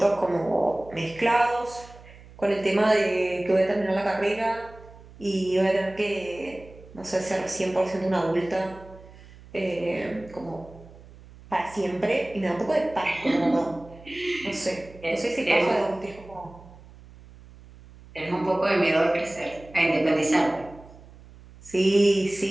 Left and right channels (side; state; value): right; noise; hum, 21 dB below the sound